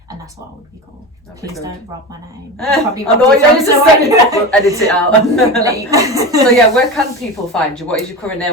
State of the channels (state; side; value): normal; both; correlation 0.25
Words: and that's what I would be called. Please don't rob my name. Probably I know what you're saying. We'll edit it out. So yeah, where can people find you? What is your current name